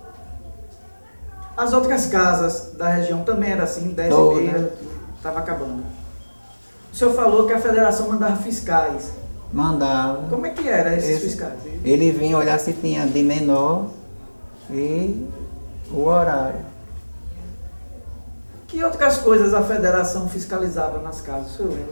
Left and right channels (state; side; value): inverted; both; correlation -1.00